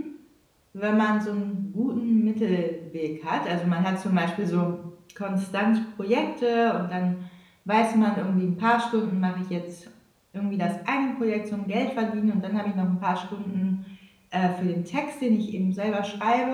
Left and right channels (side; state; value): both; identical; correlation 1.00